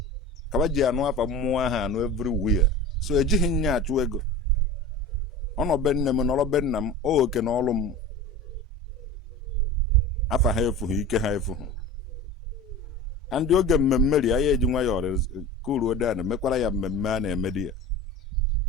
kaba ji anụ afa mmụọ ahụ anụ everywhere so ejighị nya achụ ego ọnọbe nne m nọrọ be nna m oke na ọlụ m afa ha efughị ike ha efughị and oge mmemme ri ya eji nwa ya ọrụ kuru odan mekwara ya mmemme a na-eme di ya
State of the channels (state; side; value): normal; both; correlation 0.34